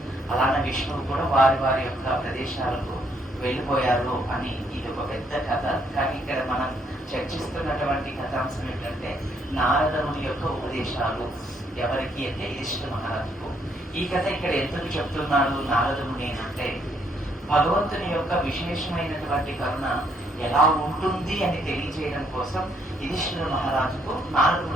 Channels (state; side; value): normal; both; correlation 0.70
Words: అలానే విష్ణువు కూడా వారి వారి యొక్క ప్రదేశాలకు వెళ్ళిపోయారు అని ఇది ఒక పెద్ద కథ. కానీ ఇక్కడ మనం చర్చిస్తున్నటువంటి కథాంశం ఏంటంటే నారదుని యొక్క ఉపదేశాలు ఎవరికి అంటే యుధిష్ఠిర మహారాజుకు. ఈ కథ ఇక్కడ ఎందుకు చెప్తున్నాడు నారదుని అంటే భగవంతుని యొక్క విశేషమైనటువంటి కరుణ ఎలా ఉంటుంది అని తెలియజేయడం కోసం యుధిష్ఠిర మహారాజుకు